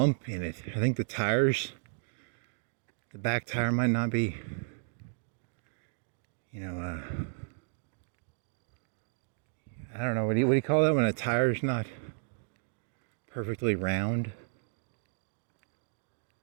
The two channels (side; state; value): left; silent; digital silence